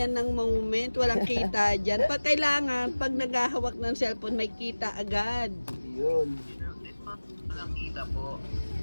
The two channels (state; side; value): inverted; both; correlation -1.00